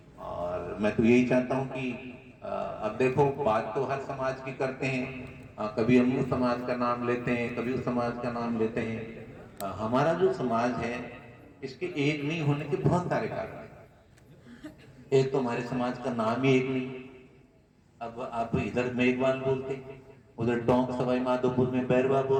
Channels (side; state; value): both; identical; correlation 1.00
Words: और मैं तो यही चाहता हूँ कि अब देखो, बात तो हर समाज की करते हैं, कभी हम उस समाज का नाम लेते हैं, कभी उस समाज का नाम लेते हैं। हमारा जो समाज है इसके एक नहीं होने के बहुत सारे कारण हैं। एक तो हमारे समाज का नाम ही एक नहीं। अब आप इधर मेघवाल बोलते, उधर टोंक सवाई माधोपुर में बैरवा